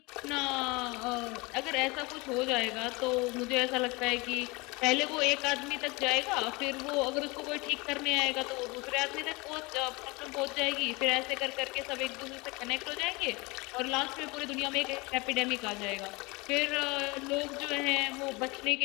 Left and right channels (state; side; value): quieter; right; 25.4 dB